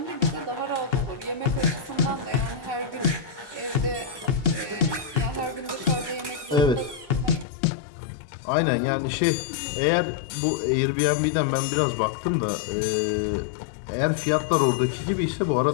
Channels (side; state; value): right; drops out; at 7.5 s